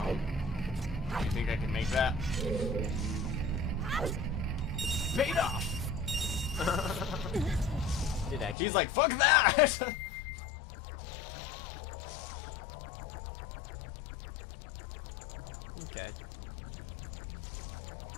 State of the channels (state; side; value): drops out; right; at 8.6 s